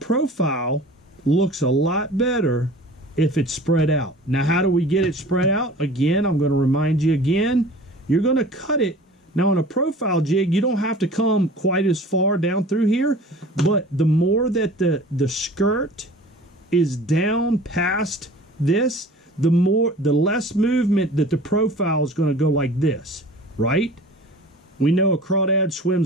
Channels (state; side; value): normal; both; correlation 0.43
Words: looks a lot better if it's spread out. Now, how do we get it spread out? Again, I'm going to remind you again, you're going to cut it. Now, on a profile jig, you don't have to come quite as far down through here, but the more that the skirt is down past this, the less movement that the profile is going to go like this, right? We know a crawdad